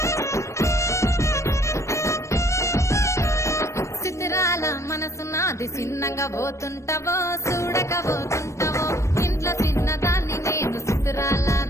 చిత్రాల మనసు నాది చిన్నగా పోతుంటావో చూడకపోతుంటావో ఇంట్లో చిన్నదాన్ని నేను చిత్రాల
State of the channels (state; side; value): late; right; 0.14 ms